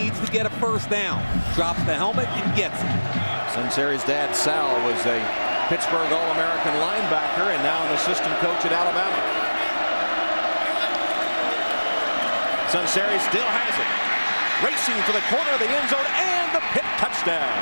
to get a first down. Drops the helmet and gets it. Sunseri's dad, Sal, was a Pittsburgh All-American linebacker and now an assistant coach at Alabama. Sunseri still has it. Racing for the corner of the end zone and the Pitt touchdown.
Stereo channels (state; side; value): inverted; both; correlation -1.00